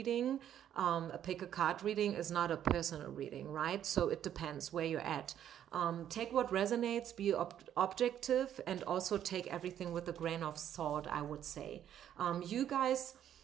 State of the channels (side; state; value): left; quieter; 10.4 dB